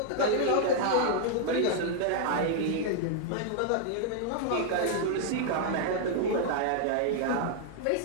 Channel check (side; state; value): both; different; correlation -0.01